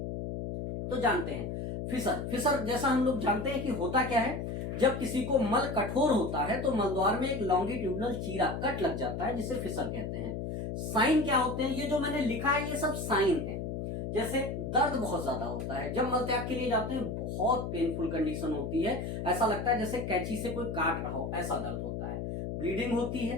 तो जानते हैं फिशर। फिशर जैसा हम लोग जानते हैं कि होता क्या है, जब किसी को मल कठोर होता है तो मलद्वार में एक लॉन्गिट्यूडनल चीरा कट लग जाता है, जिसे फिशर कहते हैं। साइन क्या होते हैं? ये जो मैंने लिखा है ये सब साइन है। जैसे दर्द बहुत ज्यादा होता है, जब मल त्याग के लिए जाते हैं बहुत पेनफुल कंडीशन होती है, ऐसा लगता है जैसे कैंची से कोई काट रहा हो, ऐसा दर्द होता है। ब्लीडिंग होती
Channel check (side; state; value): left; noise; hum, 4 dB below the sound